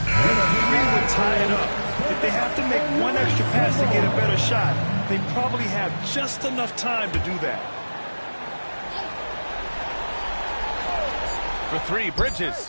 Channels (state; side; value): inverted; both; correlation -1.00